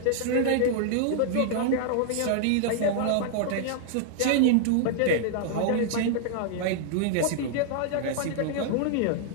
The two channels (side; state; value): both; different; correlation -0.01